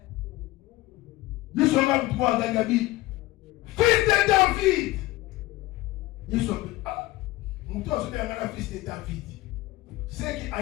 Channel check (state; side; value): quieter; right; 18.3 dB